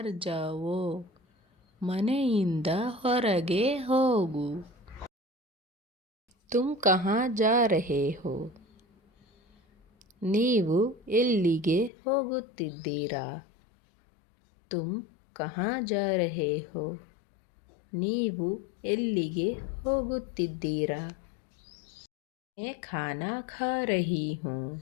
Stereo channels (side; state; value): right; drops out; at 11.9 s